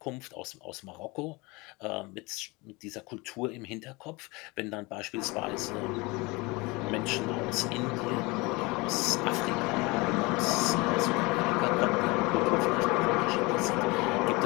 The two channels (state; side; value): quieter; right; 24.8 dB